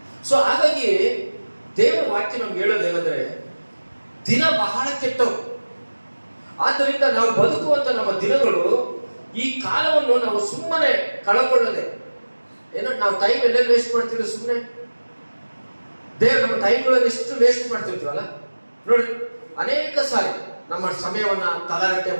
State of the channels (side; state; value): both; inverted; correlation -1.00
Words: ಸೊ ಹಾಗಾಗಿ ದೇವರ ವಾಕ್ಯ ನಮ್ಗೆ ಹೇಳೋದೇನಂದ್ರೆ, ದಿನ ಬಹಳ ಕೆಟ್ಟವು. ಆದ್ದರಿಂದ ನಾವು ಬದುಕುವಂತ ನಮ್ಮ ದಿನಗಳು, ಈ ಕಾಲವನ್ನು ನಾವು ಸುಮ್ಮನೆ ಕಳಕೊಳ್ಳದೆ, ಏನೋ ನಾವು ಟೈಮ್ ಎಲ್ಲೆಲ್ಲಿ ವೇಸ್ಟ್ ಮಾಡ್ತೀವಿ ಸುಮ್ಮನೆ. ದೇವ್ರು ನಮ್ಮ ಟೈಮ್ಗಳನ್ನು ಎಷ್ಟು ವೇಸ್ಟ್ ಮಾಡ್ತಿರ್ತೀವಲ್ಲ ನೋಡಿ. ಅನೇಕ ಸಾರಿ ನಮ್ಮ ಸಮಯವನ್ನ ತಲಾಟೆ